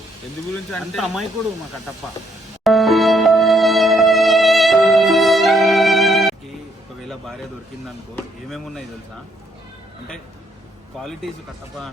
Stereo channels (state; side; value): normal; both; correlation 0.70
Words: ఎందు గురించి అంటే అమ్మాయికుడు మా కట్టప్ప. ఒకవేళ భార్య దొరికిందనుకో ఏమేమి ఉన్నాయి తెలుసా? అంటే క్వాలిటీస్ కట్టప్ప